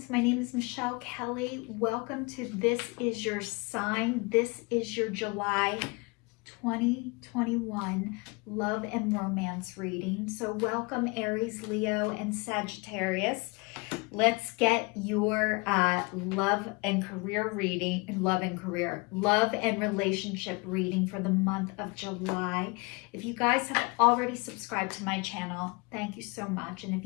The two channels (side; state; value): right; quieter; 28.6 dB